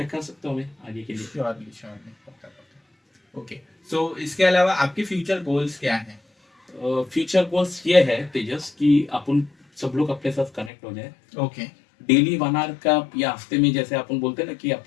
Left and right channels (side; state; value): right; drops out; at 10.7 s